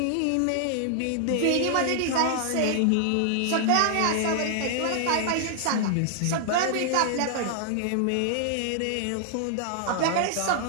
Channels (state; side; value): different; both; correlation 0.00